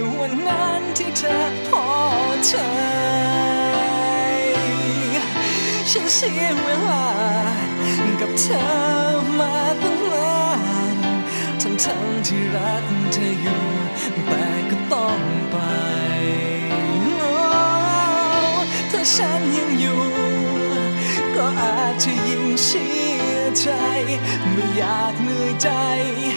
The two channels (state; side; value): inverted; both; correlation -1.00